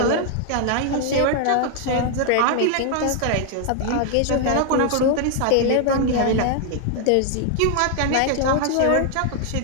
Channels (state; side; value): different; both; correlation 0.00